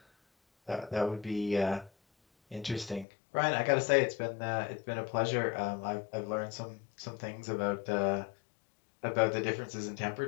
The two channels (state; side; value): drops out; right; at 3.1 s